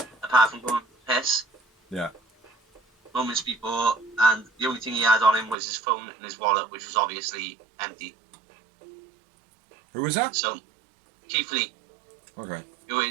apart from going to piss. Yeah. Moments before, and the only thing he had on him was his phone and his wallet, which was obviously empty. Who was that? So, Keith Lee, Okay. who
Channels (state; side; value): drops out; left; at 5.6 s